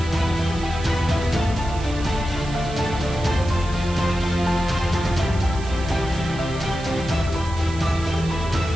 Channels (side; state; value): right; noise; hiss, 17 dB below the sound